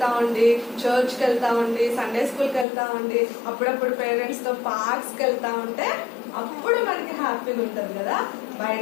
ఉండి, చర్చ్కి వెళ్తా ఉండి, సండే స్కూల్కి వెళ్తా ఉండి, అప్పుడప్పుడు పేరెంట్స్ తో పార్క్స్కి వెళ్తా ఉంటే అప్పుడు మనకి హ్యాపీగా ఉంటుంది కదా.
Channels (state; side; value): drops out; right; at 2.7 s